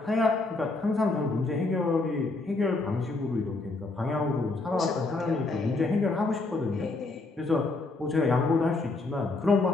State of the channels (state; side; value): quieter; right; 3.3 dB